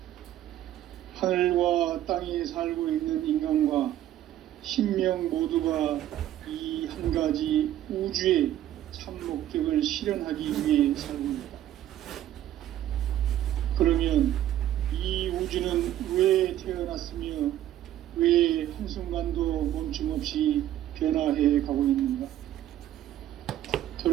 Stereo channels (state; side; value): quieter; left; 12.6 dB